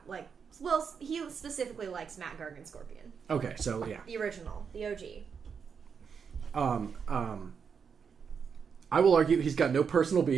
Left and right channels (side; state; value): left; quieter; 6.4 dB